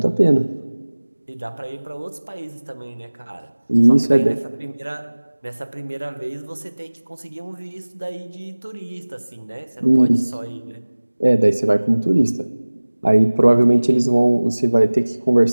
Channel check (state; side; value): inverted; both; correlation -1.00